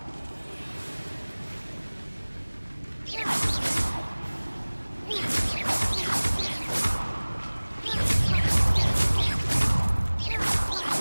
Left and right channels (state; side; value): inverted; both; correlation -1.00